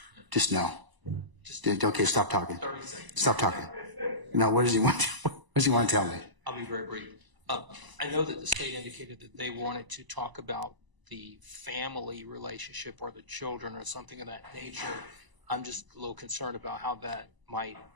just no. Okay, stop talking. 30 seconds. Stop talking. No, what does he want to tell me? I'll be very brief. I know that the state indicated that they wanted to talk about the family relationship or the children or something of that nature. I'm just a little concerned about how that might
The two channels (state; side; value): late; left; 1.0 ms